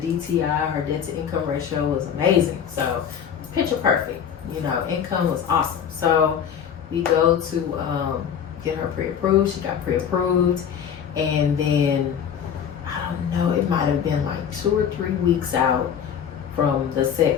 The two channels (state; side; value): quieter; right; 8.2 dB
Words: her debt to income ratio, was amazing. So picture perfect. Income was awesome. So we go to get her pre-approved. She got pre-approved, and then I don't know. It might have been like 2 or 3 weeks out from the